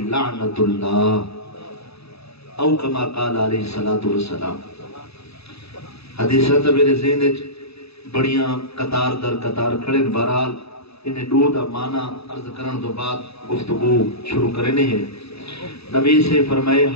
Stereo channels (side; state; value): right; late; 0.79 ms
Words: لعنت اللہ، او کما قال علیہ الصلوۃ والسلام۔ حدیثاں تے میرے ذہن وچ بڑیاں قطار در قطار کھڑے، بہرحال انہیں دو دا معنی عرض کرن تو بعد گفتگو شروع کرنے ہیں۔ نبی سے فرمائے